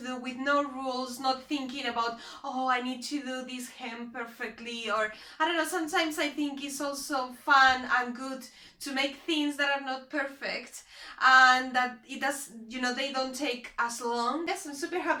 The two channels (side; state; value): both; identical; correlation 1.00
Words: do with no rules, not thinking about, oh, I need to do this hem perfectly, or I don't know, sometimes I think it's also fun and good to make things that are not perfect, and that it does, you know, they don't take as long. Yes, I'm super